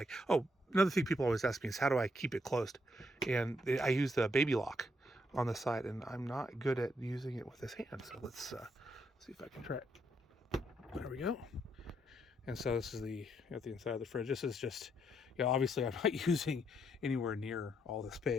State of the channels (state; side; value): normal; both; correlation 0.75